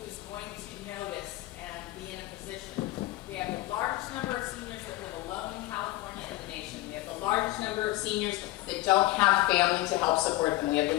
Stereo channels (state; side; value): quieter; right; 18.0 dB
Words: going to notice and be in a position. We have the largest number of seniors that live alone in California in the nation. We have the largest number of seniors that don't have family to help support them. We have